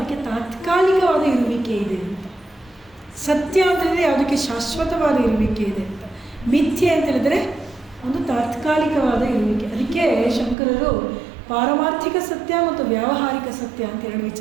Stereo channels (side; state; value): left; drops out; at 10.6 s